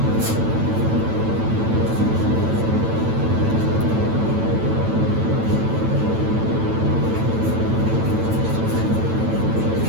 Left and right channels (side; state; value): left; late; 9.0 ms